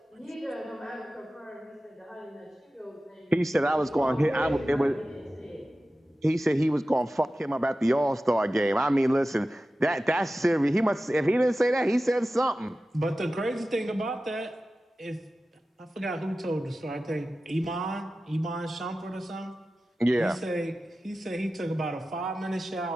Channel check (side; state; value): both; normal; correlation 0.95